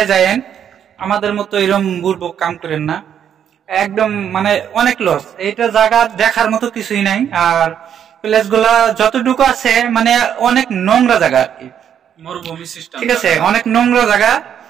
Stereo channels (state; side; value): quieter; left; 9.0 dB